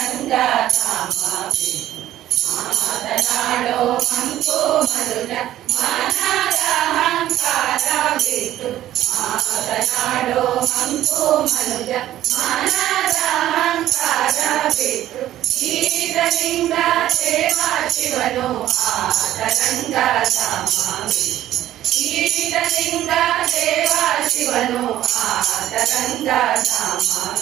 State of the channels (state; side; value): quieter; left; 13.2 dB